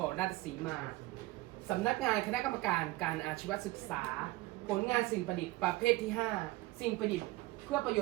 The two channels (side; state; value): left; quieter; 19.8 dB